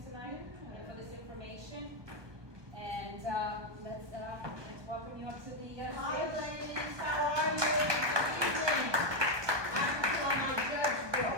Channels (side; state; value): left; late; 1.2 ms